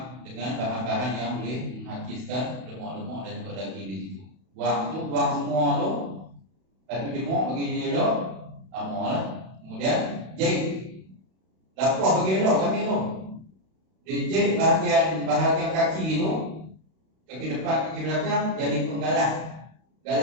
dengan bahan-bahan yang boleh menghakiskan lemak-lemak dan juga daging di situ. Buang semua tu. Lepas tu jemuk bagi dia elok. Lama lah. Kemudian jahit. Lapor bagi elok kami tu. Dia jahit bahagian kaki tu, kaki depan, kaki belakang, jadi penggalah.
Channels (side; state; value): left; late; 32 ms